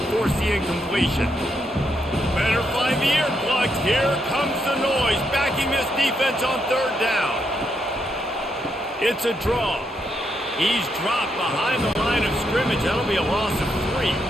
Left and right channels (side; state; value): both; normal; correlation 0.79